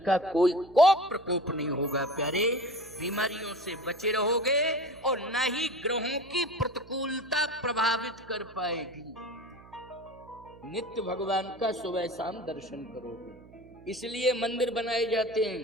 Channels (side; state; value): right; noise; hum, 22 dB below the sound